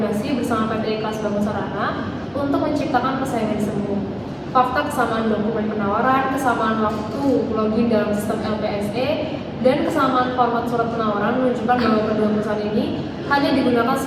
bersama PT Ikhlas Bangun Sarana untuk menciptakan persaingan semu. Fakta kesamaan dokumen penawaran, kesamaan waktu login dalam sistem LPSE, dan kesamaan format surat penawaran menunjukkan bahwa kedua perusahaan ini hanya digunakan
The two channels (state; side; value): identical; both; correlation 1.00